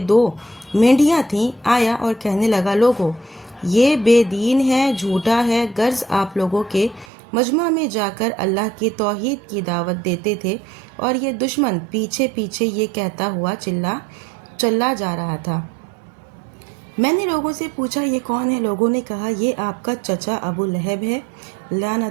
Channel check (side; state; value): left; drops out; at 7.1 s